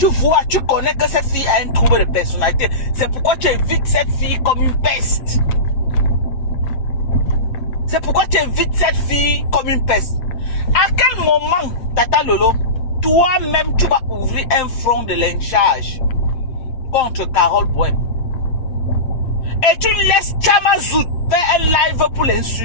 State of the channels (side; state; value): right; late; 8.7 ms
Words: vois, tu connais que cette fille a un trouble de personnalité. C'est pourquoi tu évites cette fille comme une peste. C'est pourquoi tu évites cette fille comme une peste. À quel moment, Tata Lolo, toi-même, tu vas ouvrir un front de lynchage contre Carole Bohème? Et tu laisses Chamazout faire un live pour